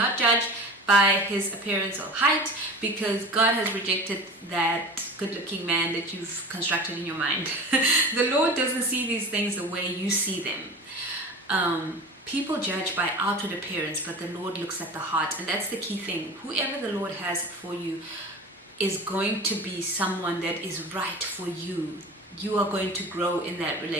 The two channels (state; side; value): normal; both; correlation 0.35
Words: judge by his appearance or height, because God has rejected that good-looking man that you've constructed in your mind. The Lord doesn't see these things the way you see them. People judge by outward appearance, but the Lord looks at the heart, and that's the key thing. Whoever the Lord has for you is going to be someone that is right for you. You are going to grow in that